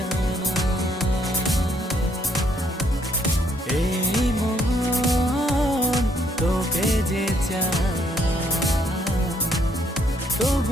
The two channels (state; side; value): normal; both; correlation 0.69